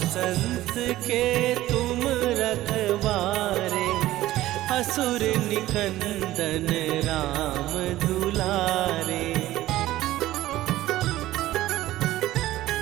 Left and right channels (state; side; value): quieter; left; 15.5 dB